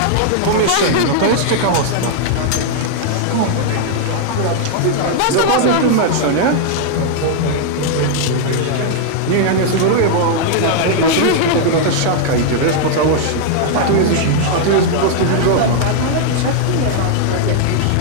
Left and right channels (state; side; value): different; both; correlation -0.01